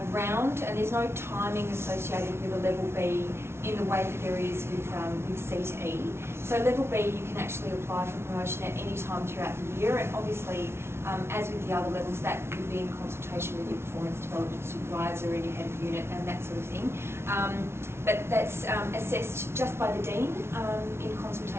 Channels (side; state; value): left; late; 0.12 ms